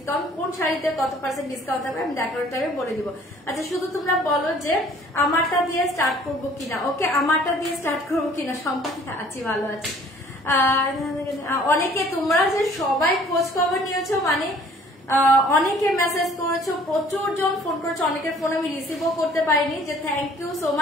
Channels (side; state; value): both; normal; correlation 0.55